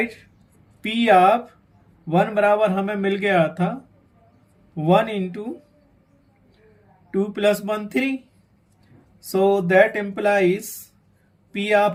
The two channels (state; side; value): identical; both; correlation 1.00